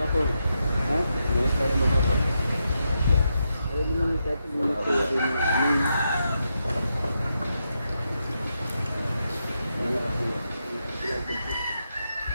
Ha? Minit tayo mag-apong. Ayaw naman kahit minit ko rin ng amin.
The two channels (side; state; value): both; inverted; correlation -0.84